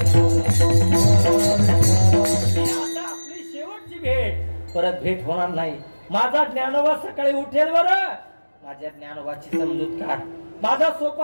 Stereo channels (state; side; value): inverted; both; correlation -1.00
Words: शेवटची भेट, परत भेट होणार नाही. माझा ज्ञानोबा सकाळी उठेल. बरं माझ्या ज्ञानोबाची समजूत काढ. माझा